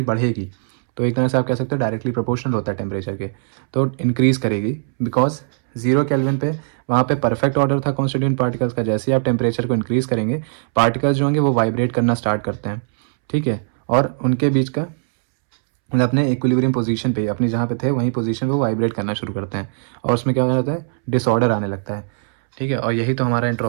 बढ़ेगी। तो एक तरह से आप कह सकते हो डायरेक्टली प्रोपोर्शनल होता है टेम्परेचर के, तो इंक्रीज़ करेगी। बिकॉज 0 केल्विन पे वहाँ पे परफेक्ट ऑर्डर था कॉन्स्टिट्यूएंट पार्टिकल्स का। जैसे ही आप टेम्परेचर को इंक्रीज़ करेंगे, पार्टिकल्स जो होंगे वो वाइब्रेट करना स्टार्ट करते हैं। ठीक है, और उनके बीच का मतलब अपने इक्विलिब्रियम पोजीशन पे, अपनी जहाँ पे थे वहीं पोजीशन पे वो वाइब्रेट करना शुरू करते हैं, और उसमें क्या हो जाता है? डिसऑर्डर आने लगता है। ठीक है, और यही तो हमारा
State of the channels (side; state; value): left; silent; 66 dB below the other